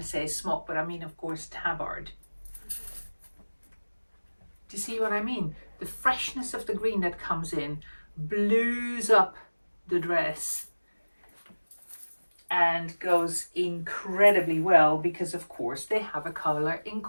say smock, but I mean, of course, tabard. Do you see what I mean? The freshness of the green that comes in blues up the dress and goes incredibly well because, of course, they have a color in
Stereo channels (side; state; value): both; inverted; correlation -1.00